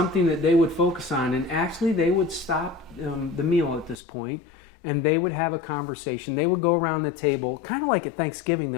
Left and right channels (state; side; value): drops out; right; at 4.0 s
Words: that they would focus on. And actually, they would stop the meal at this point, and they would have a conversation. They would go around the table, kind of like at Thanksgiving